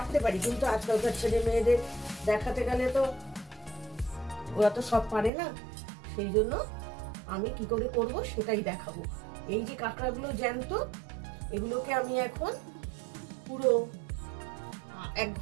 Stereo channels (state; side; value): drops out; left; at 5.3 s